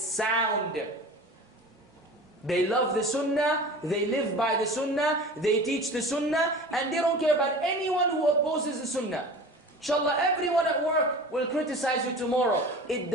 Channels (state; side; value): normal; both; correlation 0.37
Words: They love the Sunnah, they live by the Sunnah, they teach the Sunnah, and they don't care about anyone who opposes the Sunnah. Inshallah, everyone at work will criticize you tomorrow. It